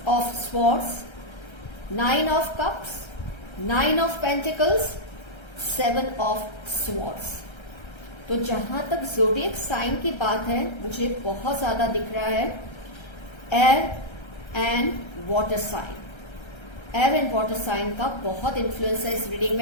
of swords, 9 of cups, 9 of pentacles, 7 of swords. तो जहां तक ज़ोडिएक साइन की बात है मुझे बहुत ज्यादा दिख रहा है air and water sign. Air and water sign का बहुत इन्फ्लुएंस है इस रीडिंग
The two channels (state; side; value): late; right; 1.3 ms